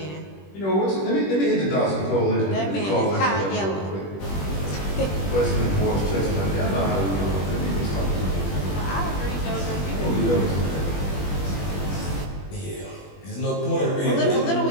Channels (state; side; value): late; right; 21 ms